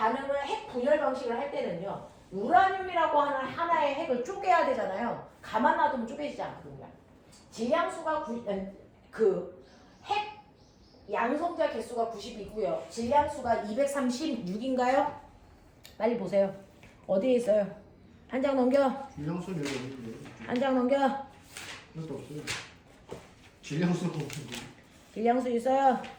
핵 분열 방식을 할 때는요. 우라늄이라고 하는 하나의 핵을 쪼개야 되잖아요. 가만 놔두면 쪼개지지 않거든요. 질량수가 핵 양성자 개수가 90이고요. 질량수가 236인가요? 빨리 보세요. 어디에 있어요? 한 장 넘겨. 질량수는 여기 없는데. 한 장 넘겨. 이것도 없어요. 질량수가 없는데. 질량수 있어요?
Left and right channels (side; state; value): both; identical; correlation 1.00